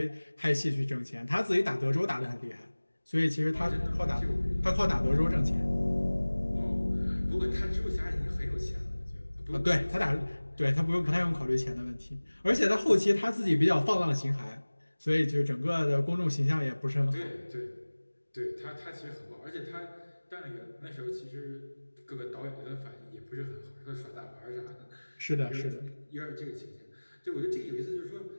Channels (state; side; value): inverted; both; correlation -1.00